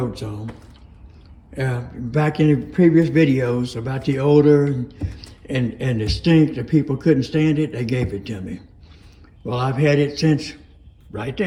on. Back in the previous videos about the odor and the stink, the people couldn't stand it, they gave it to me. Well, I've had it since right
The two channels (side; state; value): both; identical; correlation 1.00